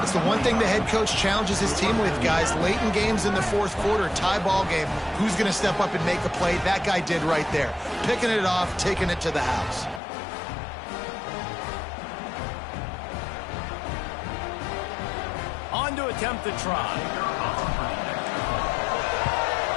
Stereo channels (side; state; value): right; drops out; at 10.0 s